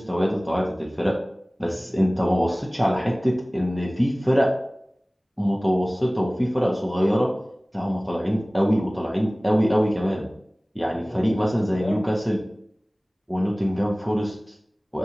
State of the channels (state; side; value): normal; both; correlation 0.98